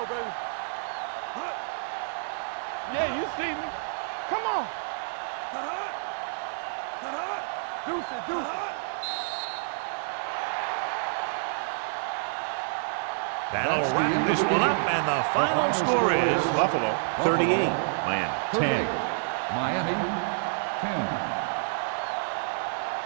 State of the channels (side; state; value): left; silent; digital silence